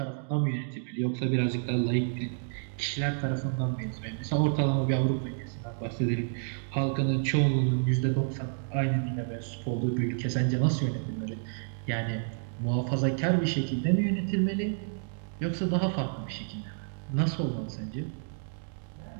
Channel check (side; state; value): left; silent; digital silence